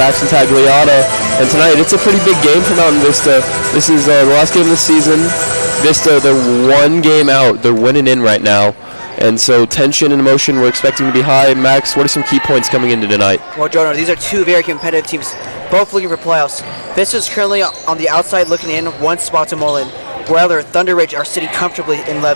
and Tagliata. And tonight it's a pretty big game for Mountain Vista. This is the last game of the season. Vista, they're one game out. They're winning in right now. And so tension and emotion we're expecting to be high. Max, what are some key points coming into tonight? Well, Jonah, these are two very competitive teams, both looking for playoffs. Vista is currently on the outside looking in, one spot to Mullen. While Thunderridge are sitting comfortably in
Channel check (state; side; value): inverted; both; correlation -1.00